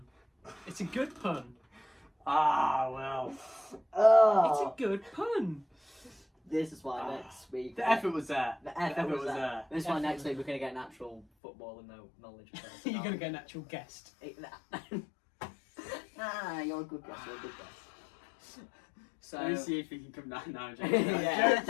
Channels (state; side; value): drops out; right; at 11.2 s